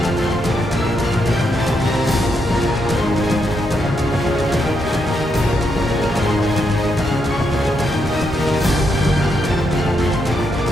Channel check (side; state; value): both; normal; correlation 0.80